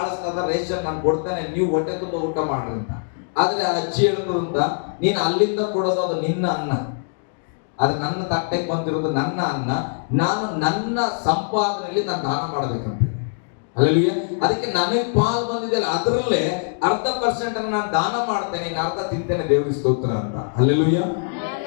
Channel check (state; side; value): silent; right; digital silence